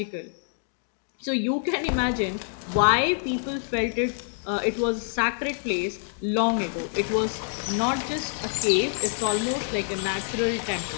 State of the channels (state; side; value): silent; right; digital silence